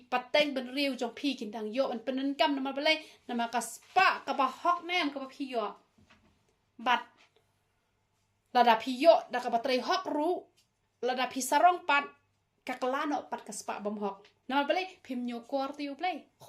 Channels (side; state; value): both; identical; correlation 1.00